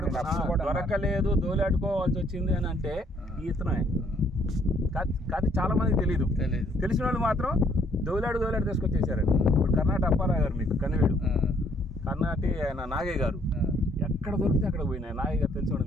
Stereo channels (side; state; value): both; normal; correlation 0.65